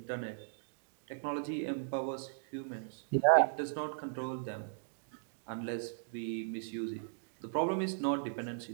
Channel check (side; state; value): left; silent; digital silence